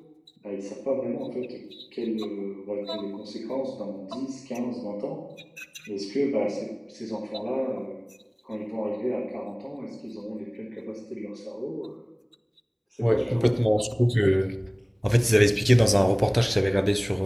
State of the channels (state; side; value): identical; both; correlation 1.00